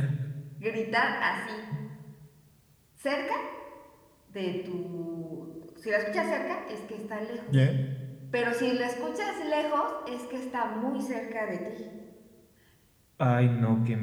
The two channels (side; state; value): both; identical; correlation 1.00